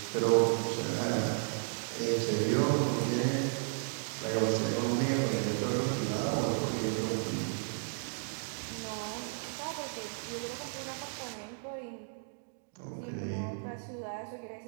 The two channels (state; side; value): silent; left; digital silence